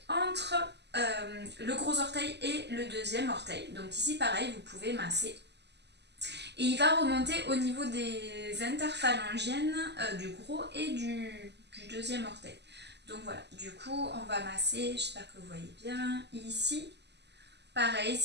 entre le gros orteil et le deuxième orteil. Donc ici pareil, vous pouvez masser. Et il va remonter au niveau des interphalangiennes du gros et du deuxième orteil. Donc voilà, du coup on va masser, j'espère que vous voyez bien, ici. Pareil,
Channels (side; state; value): left; late; 0.50 ms